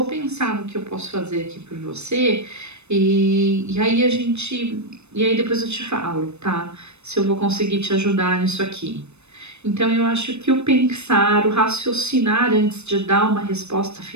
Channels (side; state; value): left; late; 0.81 ms